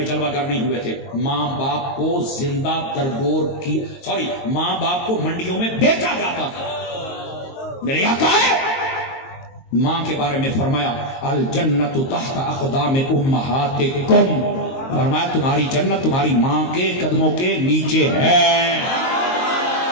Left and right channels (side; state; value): right; late; 22 ms